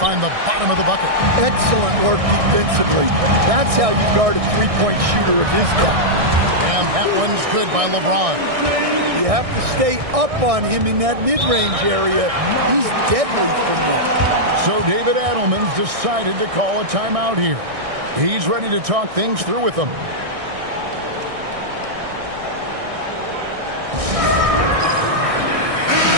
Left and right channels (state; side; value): late; left; 1.6 ms